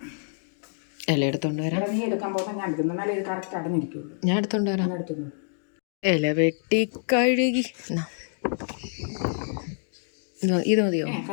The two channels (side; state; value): right; silent; digital silence